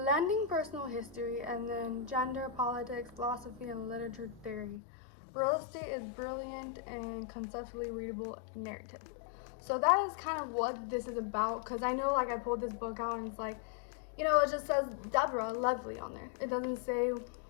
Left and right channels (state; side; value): drops out; right; at 4.8 s